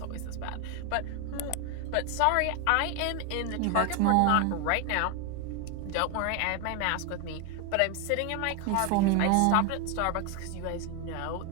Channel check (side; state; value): both; different; correlation 0.01